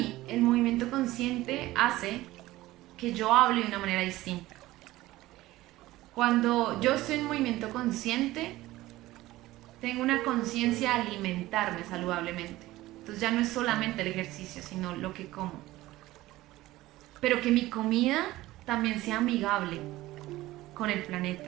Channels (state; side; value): quieter; left; 17.2 dB